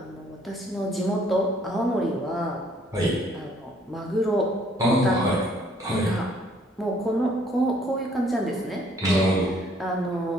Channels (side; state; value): both; normal; correlation 0.63